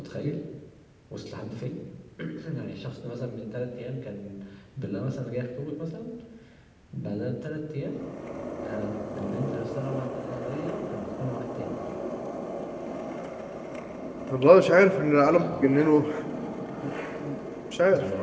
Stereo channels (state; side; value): identical; both; correlation 1.00